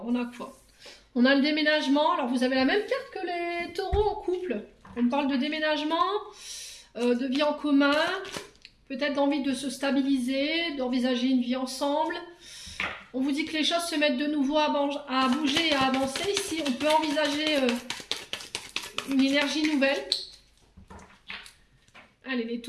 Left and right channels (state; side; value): identical; both; correlation 1.00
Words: on a quoi? On a le déménagement, alors vous avez la même carte que les taureaux en couple. On parle de déménagement, de vie en commun, peut-être d'envie de se stabiliser, d'envisager une vie ensemble. On vous dit que les choses se mettent de nouveau à bouger et à avancer. Ici, on peut envisager une énergie nouvelle. Allez, les